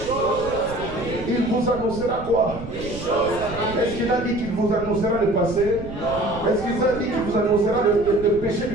Il vous annoncera quoi? Est-ce qu'il a dit qu'il vous annoncera le passé? Est-ce qu'il a dit qu'il vous annoncera le péché du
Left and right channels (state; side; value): noise; right; rumble, 12 dB below the sound